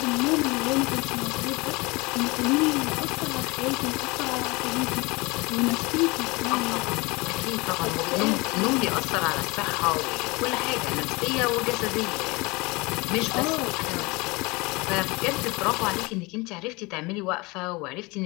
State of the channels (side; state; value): right; quieter; 25.0 dB